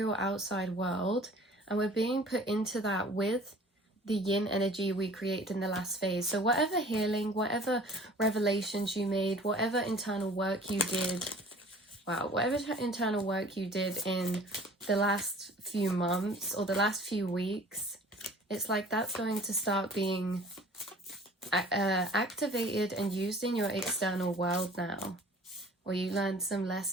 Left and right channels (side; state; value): both; normal; correlation 0.48